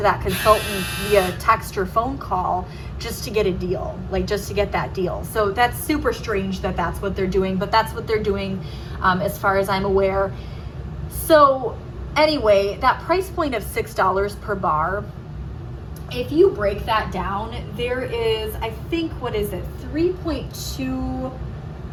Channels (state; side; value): identical; both; correlation 1.00